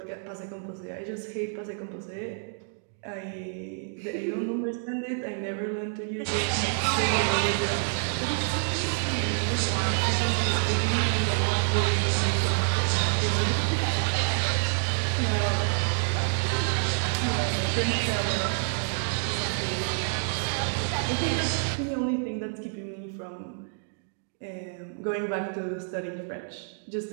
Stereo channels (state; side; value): silent; left; digital silence